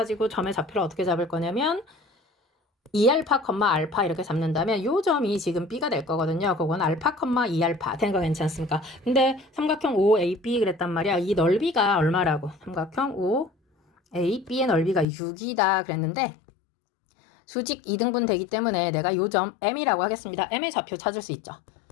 점의 좌표를 어떻게 잡을 거냐면 2알파, 알파 이렇게 잡는다면 요 점이 지금 b가 될 거거든요. 그건 알파, 2알파 된 거 괜찮습니까? 근데 삼각형 OAB 그랬단 말이야. 이 넓이가 얼마라고? 삼각형 OAB의 넓이가 6이다 그랬는데 수직 2등분 되기 때문에 내가 요 점 m이라고 하겠습니다. m의 좌표 찾을 수 있죠.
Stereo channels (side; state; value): right; drops out; at 15.1 s